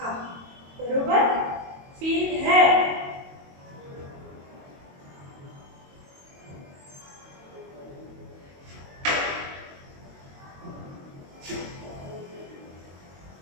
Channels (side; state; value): left; late; 22 ms